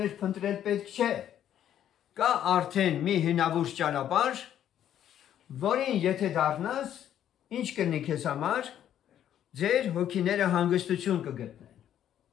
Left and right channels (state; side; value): quieter; right; 10.6 dB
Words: փնտրել պետք չէ։ Կա արդեն մի հնավուրց ճանապարհ, որին եթե դառնաս, ինչ կլինի քեզ համար, ձեր հոգիները հանգստություն կգտնեն։